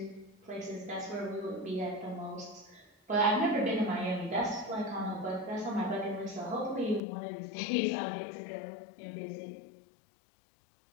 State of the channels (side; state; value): right; drops out; at 7.0 s